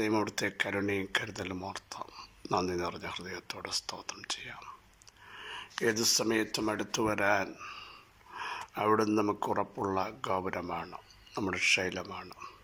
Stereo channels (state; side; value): identical; both; correlation 1.00